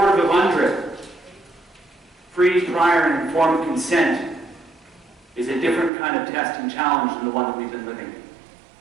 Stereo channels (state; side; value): drops out; left; at 5.9 s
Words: of UNDRIP. Free, prior, and informed consent is a different kind of test and challenge than the one that we've been living.